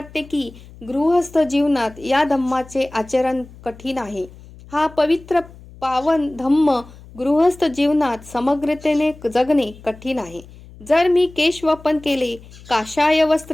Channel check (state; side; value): noise; left; hum, 20 dB below the sound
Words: की गृहस्थ जीवनात या धम्माचे आचरण कठीण आहे. हा पवित्र पावन धम्म गृहस्थ जीवनात समग्रतेने जगणे कठीण आहे. जर मी केशवपन केले, काषाय